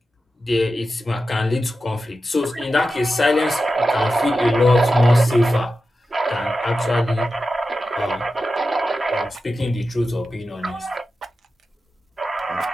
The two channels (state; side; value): normal; both; correlation 0.92